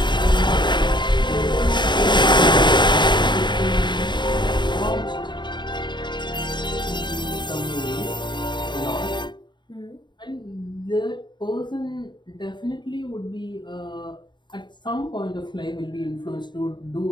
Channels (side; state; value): right; late; 0.22 ms